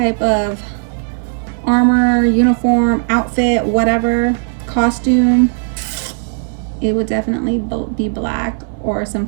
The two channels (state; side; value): silent; left; 67 dB below the other